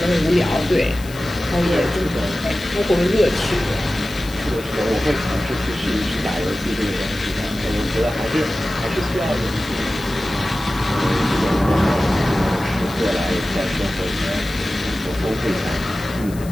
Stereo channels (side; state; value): left; noise; hiss, 18 dB below the sound